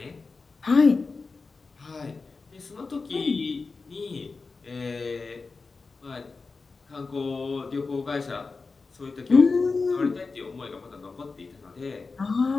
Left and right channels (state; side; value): quieter; right; 4.2 dB